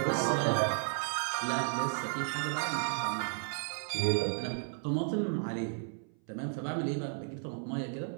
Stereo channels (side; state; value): left; silent; 55 dB below the other